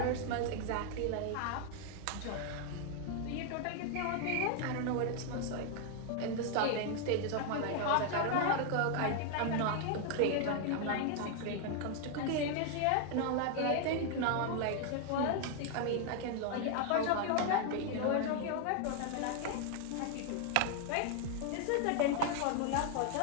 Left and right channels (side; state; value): both; different; correlation 0.00